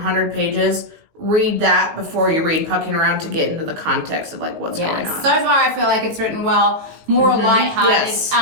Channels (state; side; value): late; left; 19 ms